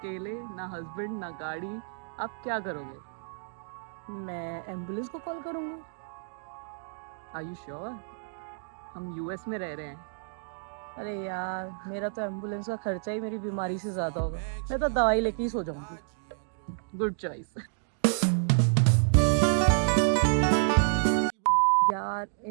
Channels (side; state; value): left; silent; digital silence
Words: ना हस्बैंड ना गाड़ी। आप क्या करोगे? मैं एम्बुलेंस को कॉल करूंगी। Are you sure? हम यूएस में रह रहे हैं। अरे यार, मेरा तो एम्बुलेंस का खर्चा ही मेरी बीमारी से ज्यादा होगा। मैं तो दवाई लेके ही सो जाऊंगी। Good choice. यार,